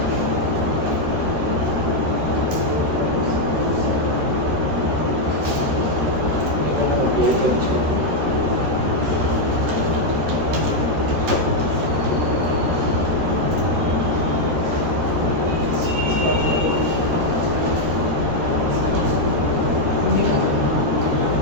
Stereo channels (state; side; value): late; left; 13 ms